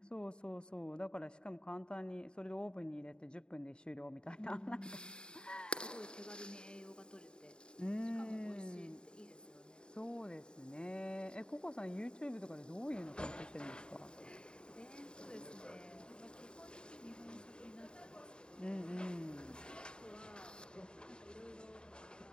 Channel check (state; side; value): late; right; 0.049 ms